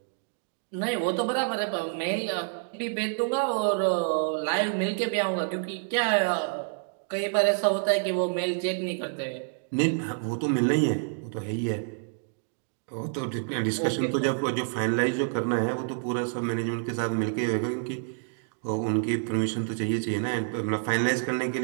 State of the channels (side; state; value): left; silent; digital silence